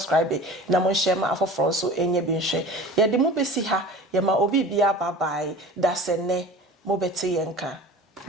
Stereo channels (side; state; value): both; normal; correlation 0.39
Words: na mon share ma for front so any bin share. Ya the mo be see ha, ya ma obi be a bye bye, that's a ne, mo beti yenka.